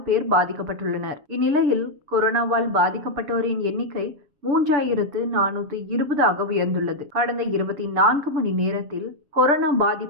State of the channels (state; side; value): late; left; 6.8 ms